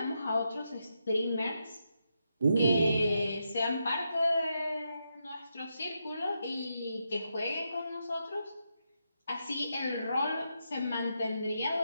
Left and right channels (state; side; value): inverted; both; correlation -0.83